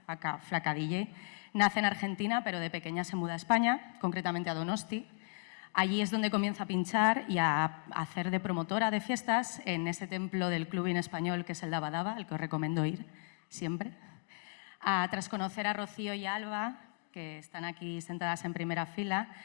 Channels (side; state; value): right; silent; 54 dB below the other